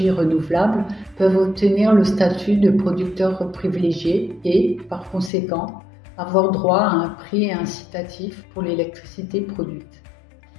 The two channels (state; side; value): drops out; right; at 5.3 s